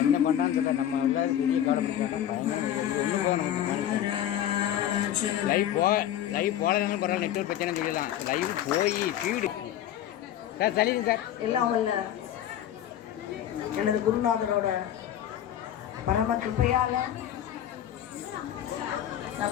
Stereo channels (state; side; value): quieter; right; 11.2 dB